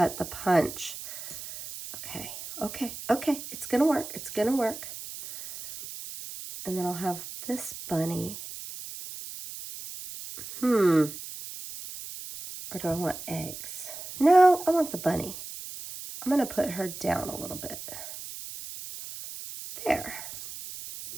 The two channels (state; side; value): noise; right; hiss, 11 dB below the sound